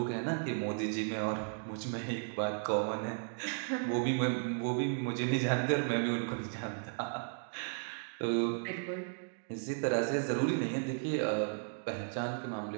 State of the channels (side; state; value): left; silent; digital silence